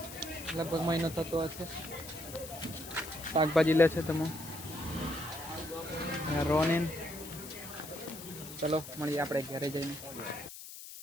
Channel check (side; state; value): left; noise; hiss, 12 dB below the sound